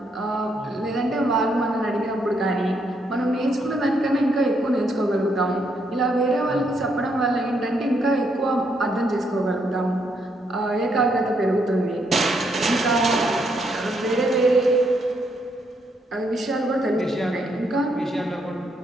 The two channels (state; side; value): normal; both; correlation 0.75